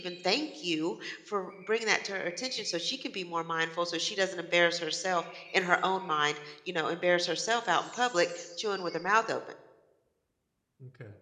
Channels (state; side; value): identical; both; correlation 1.00